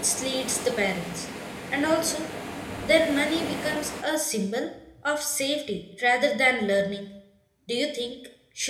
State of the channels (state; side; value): identical; both; correlation 1.00